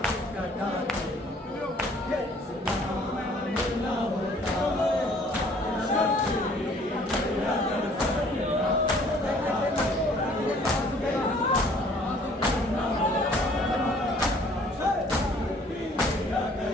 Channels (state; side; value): normal; both; correlation 0.57